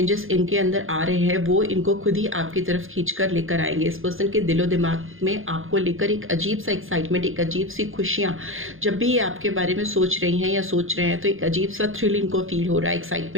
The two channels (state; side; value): late; left; 0.59 ms